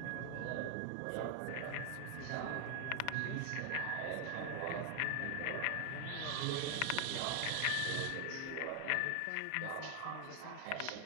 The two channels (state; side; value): different; both; correlation 0.00